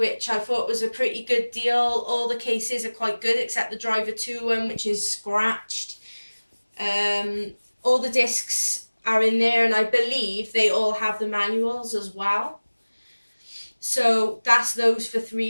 I thought was a pretty good deal. All the cases are quite good except the Driver 2 one, which is scratched. All the discs are in there, and I believe they all have the manuals as well. So that's those for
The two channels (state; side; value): inverted; both; correlation -1.00